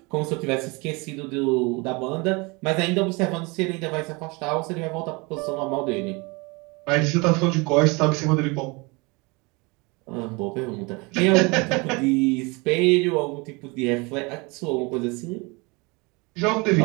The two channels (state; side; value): quieter; left; 27.4 dB